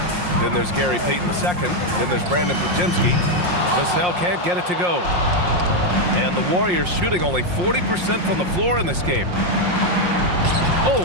Then there's Gary Payton II. Then there's Brandon Podziemski. Vassell can't get it to go. And the Warriors shooting only 40% from the floor in this game.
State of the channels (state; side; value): late; left; 5.6 ms